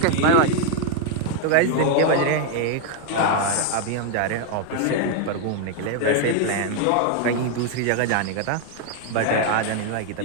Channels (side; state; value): both; different; correlation 0.00